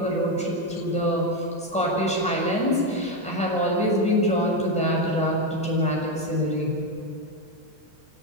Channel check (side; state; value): both; normal; correlation 0.09